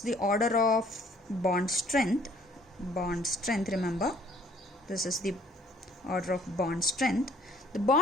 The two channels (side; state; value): both; normal; correlation 0.58